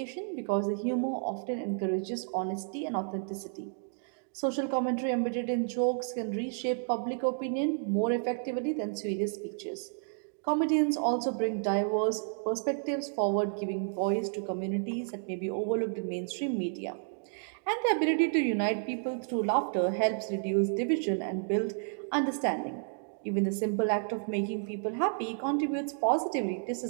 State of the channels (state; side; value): silent; left; digital silence